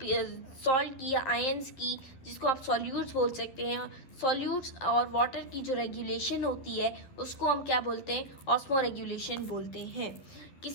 की या आयंस की, जिसको आप सॉल्यूट्स बोल सकते हैं, सॉल्यूट्स और वाटर की जो रेगुलेशन होती है उसको हम क्या बोलते हैं, ऑस्मो रेगुलेशन बोलते हैं।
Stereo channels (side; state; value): right; late; 11 ms